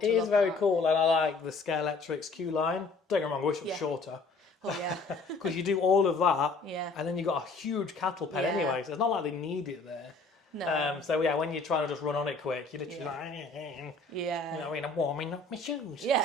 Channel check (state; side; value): quieter; right; 3.7 dB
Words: It is look very at. cool, and I like the Scalextric's queue line. Don't get me wrong, I wish it was shorter. Oh yeah. Because you do all of that, Yeah. and then you got a huge cattle pen Yeah. anyway, so it's not like they need it there. No. So yeah, when you're trying to just run on it quick, you're literally Yeah. you know, I'm warming up my shoes.